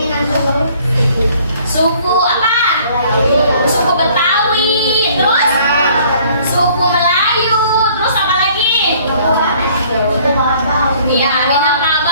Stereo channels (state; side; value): inverted; both; correlation -0.57